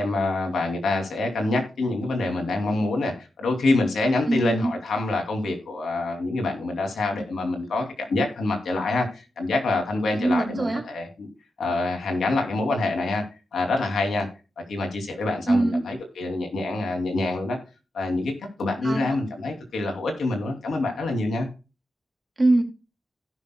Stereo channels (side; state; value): both; normal; correlation 0.88